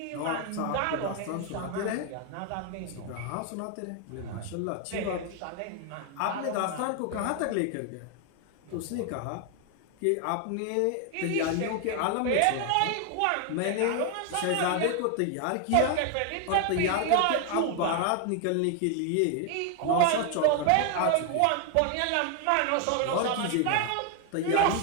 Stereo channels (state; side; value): different; both; correlation 0.01